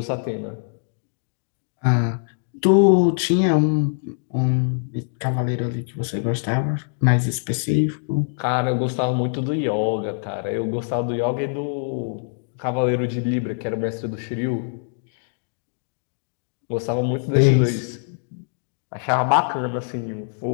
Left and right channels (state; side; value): silent; right; digital silence